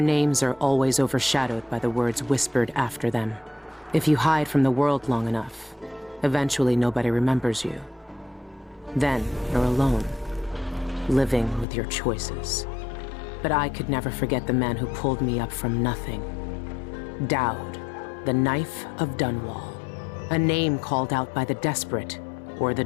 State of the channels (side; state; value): right; drops out; at 11.7 s